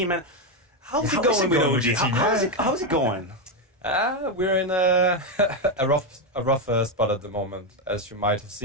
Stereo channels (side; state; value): both; normal; correlation 0.06